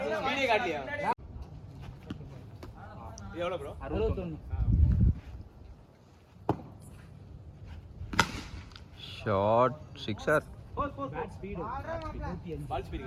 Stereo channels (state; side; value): identical; both; correlation 1.00